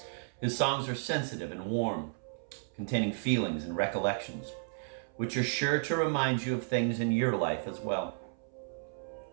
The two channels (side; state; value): left; silent; 56 dB below the other